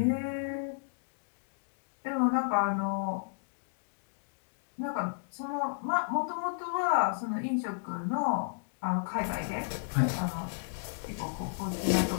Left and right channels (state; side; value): silent; right; digital silence